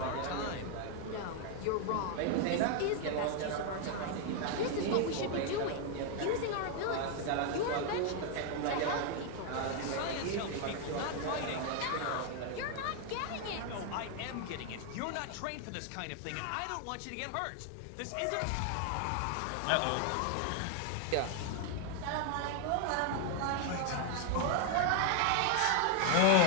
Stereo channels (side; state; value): both; different; correlation 0.00